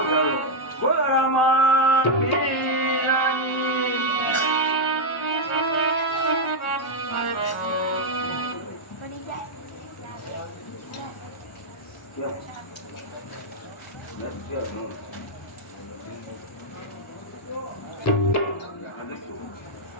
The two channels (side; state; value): both; normal; correlation -0.02